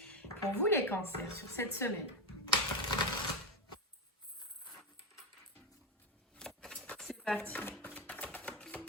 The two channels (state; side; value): normal; both; correlation 0.10